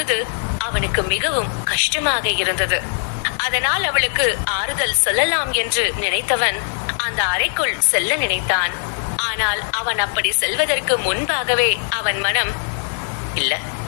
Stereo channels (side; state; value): right; silent; digital silence